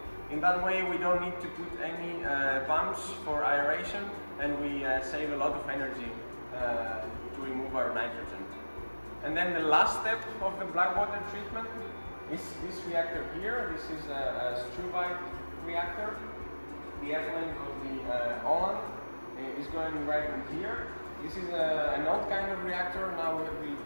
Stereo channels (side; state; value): both; inverted; correlation -1.00